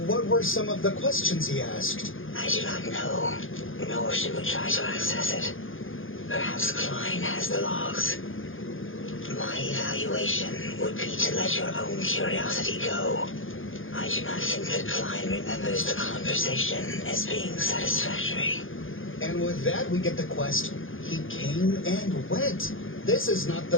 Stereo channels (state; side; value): late; right; 0.59 ms